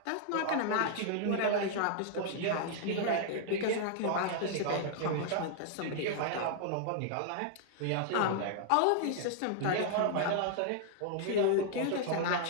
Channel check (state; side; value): different; both; correlation -0.01